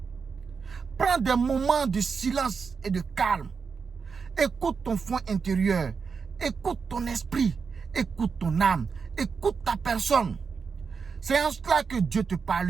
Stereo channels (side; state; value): left; quieter; 5.5 dB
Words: Prends des moments de silence et de calme. Écoute ton fond intérieur. Écoute ton esprit. Écoute ton âme. Écoute ta personne. C'est en cela que Dieu te